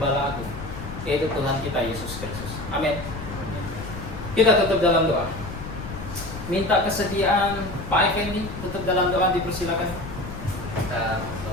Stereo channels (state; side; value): noise; left; rumble, 10 dB below the sound